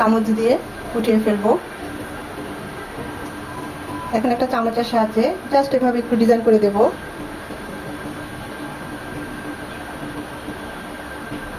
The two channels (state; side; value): identical; both; correlation 1.00